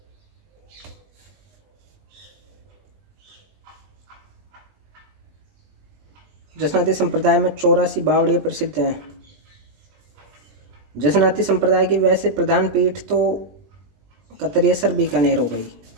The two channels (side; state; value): left; late; 20 ms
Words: जसनाती संप्रदाय में 84 बावड़ियाँ प्रसिद्ध हैं। जसनाती संप्रदाय की वैसे प्रधान पीठ तो कतरियसर बीकानेर हो